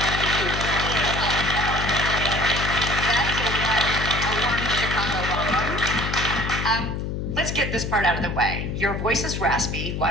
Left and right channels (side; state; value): left; noise; hum, 3 dB below the sound